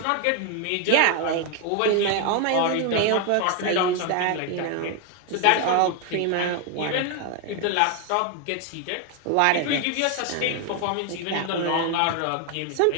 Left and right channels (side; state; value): both; different; correlation 0.01